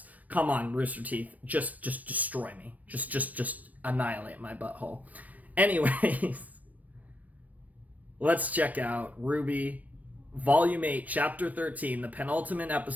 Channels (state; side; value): late; left; 0.075 ms